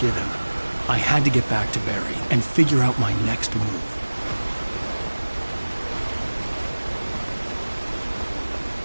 him. I had to get back to Barry and figure out my next move.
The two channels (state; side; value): inverted; both; correlation -1.00